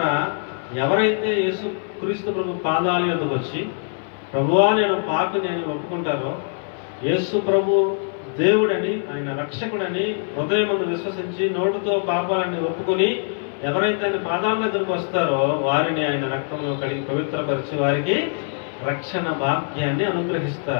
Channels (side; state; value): right; silent; 59 dB below the other